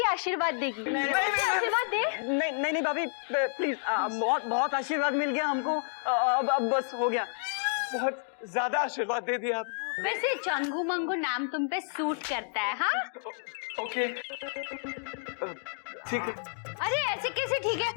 आशीर्वाद देगी। आशीर्वाद दे। नहीं नहीं भाभी, प्लीज, बहुत बहुत आशीर्वाद मिल गया हमको, अब बस हो गया। बहुत ज्यादा आशीर्वाद दे दिया आप। वैसे चंगू मंगू नाम तुम पे सूट करता है। हाँ ओके, ठीक है। अरे ऐसे कैसे ठीक है?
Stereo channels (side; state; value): right; silent; digital silence